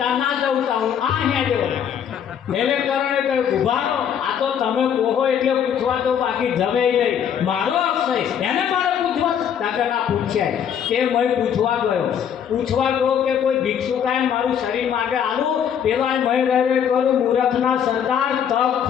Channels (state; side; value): quieter; right; 8.5 dB